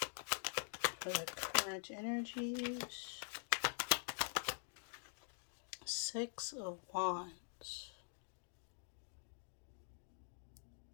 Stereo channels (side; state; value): right; silent; digital silence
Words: For the current energies. 6 of Wands.